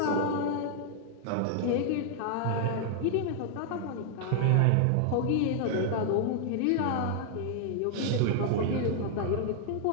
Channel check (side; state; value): both; different; correlation -0.01